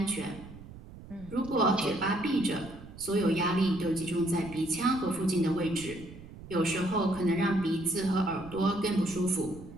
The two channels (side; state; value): right; noise; rumble, 16 dB below the sound